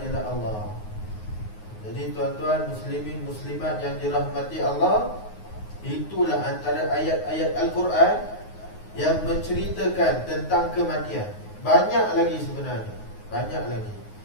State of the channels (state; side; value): late; right; 9.5 ms